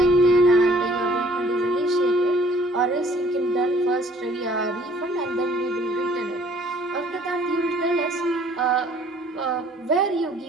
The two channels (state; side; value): normal; both; correlation 0.57